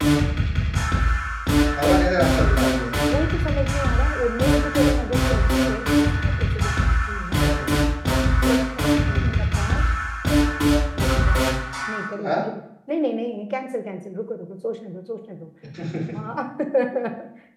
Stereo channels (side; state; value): both; identical; correlation 1.00